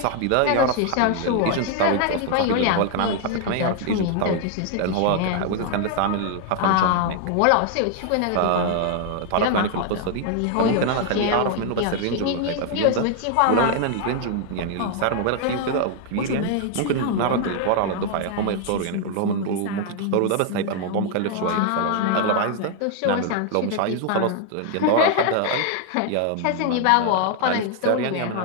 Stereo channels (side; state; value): both; different; correlation 0.00